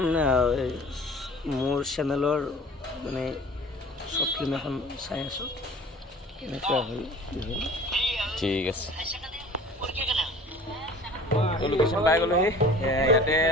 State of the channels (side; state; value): both; normal; correlation 0.45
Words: মোৰ চেনেলৰ মানে শ্বৰ্ট ফিল্ম এখন চাই আছোঁ। এনেকুৱা হ'ল ঠিক আছে। তো লোকেশ্যন পাই গ'লোহি। ইয়াতে